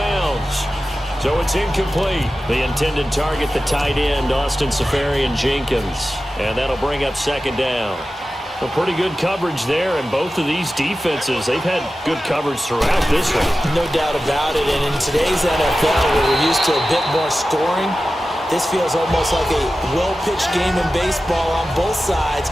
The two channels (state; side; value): normal; both; correlation 0.94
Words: So it's incomplete. The intended target, the tight end, Austin Seferian-Jenkins. And that'll bring up second down. Well, pretty good coverage there, and both of these defenses, they've had good coverage throughout this one. No doubt about it, and in today's NFL, where we're used to a bit more scoring, this feels almost like a well-pitched game in baseball on both sides